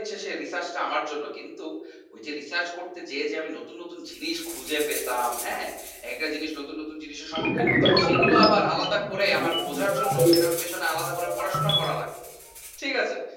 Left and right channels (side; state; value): both; identical; correlation 1.00